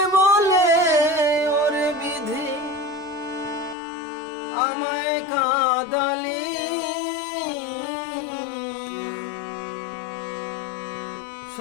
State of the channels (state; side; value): drops out; right; at 3.8 s